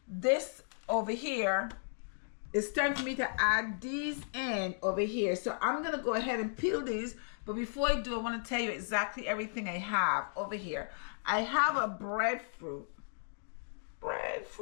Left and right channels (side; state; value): right; silent; digital silence